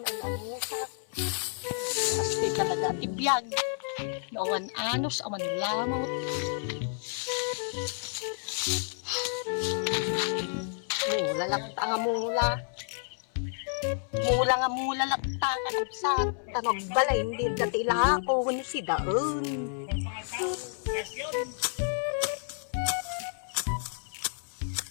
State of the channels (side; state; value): right; silent; 58 dB below the other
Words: ang usak. Pasti talaga ti biyag. Nawan anos awan lamot. Mula lakta nga mula. Mula nga mula lakta ka sa tanog balay hindi dati ilako ni si daon.